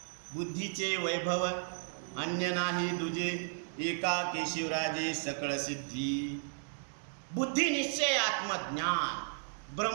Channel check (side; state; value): left; silent; digital silence